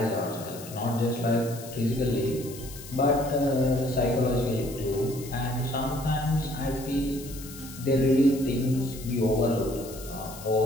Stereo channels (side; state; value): left; noise; hiss, 15 dB below the sound